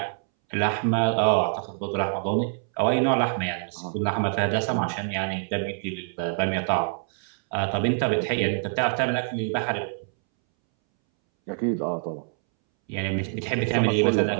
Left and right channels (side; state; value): left; silent; 61 dB below the other